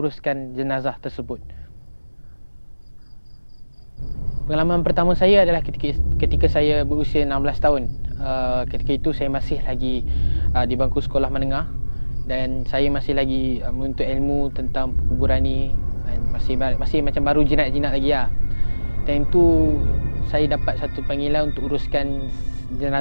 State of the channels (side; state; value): both; inverted; correlation -1.00